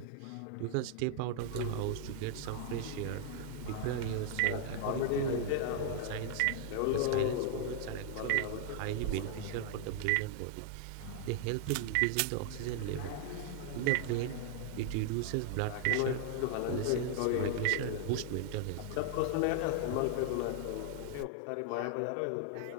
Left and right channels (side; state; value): both; different; correlation 0.00